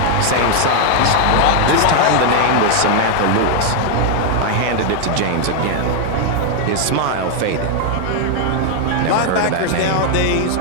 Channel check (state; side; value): different; both; correlation 0.00